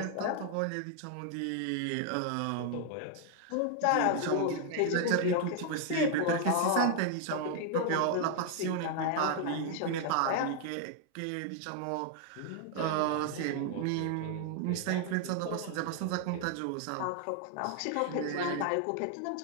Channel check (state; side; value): different; both; correlation 0.00